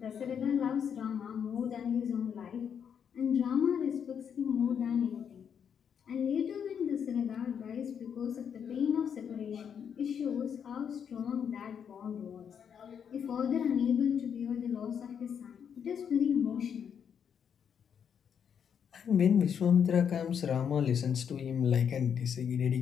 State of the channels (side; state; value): right; quieter; 7.7 dB